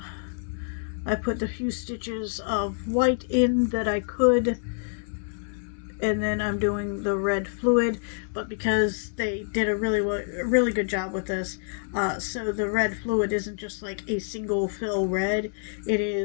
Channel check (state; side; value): silent; right; 60 dB below the other